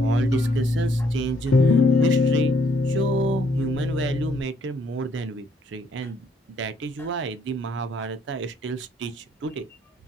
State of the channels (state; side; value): normal; both; correlation 0.68